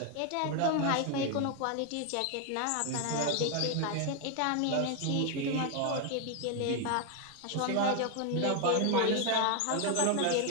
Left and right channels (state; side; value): different; both; correlation 0.00